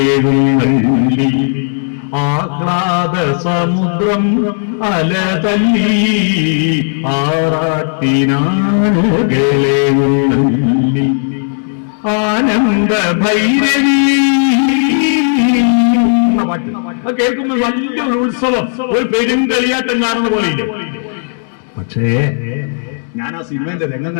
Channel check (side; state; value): right; silent; digital silence